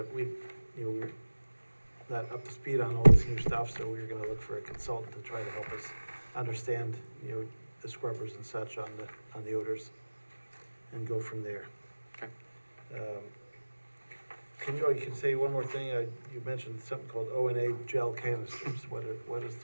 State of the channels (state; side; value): inverted; both; correlation -1.00